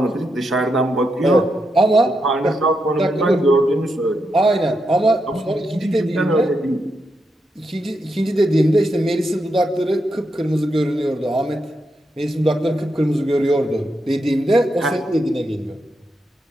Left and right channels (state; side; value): normal; both; correlation 0.84